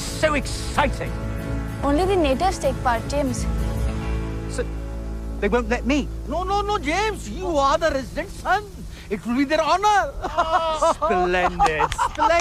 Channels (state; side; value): identical; both; correlation 1.00